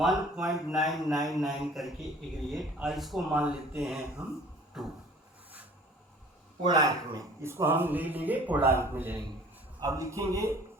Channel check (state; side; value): normal; both; correlation 0.49